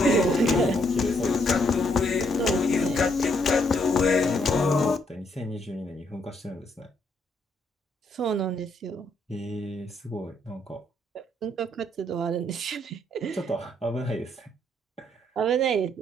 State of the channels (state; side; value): normal; both; correlation 0.72